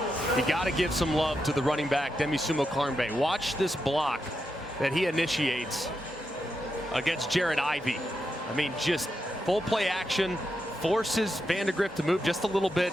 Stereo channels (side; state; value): both; normal; correlation 0.85